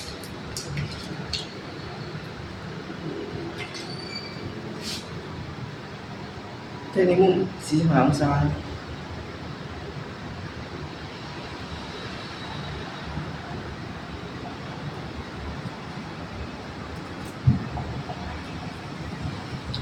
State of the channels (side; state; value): both; identical; correlation 1.00